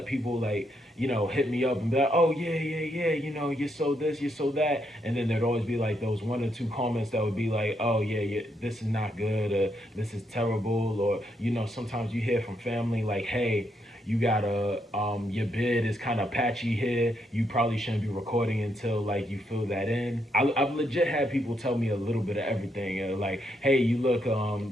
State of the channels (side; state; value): both; normal; correlation 0.77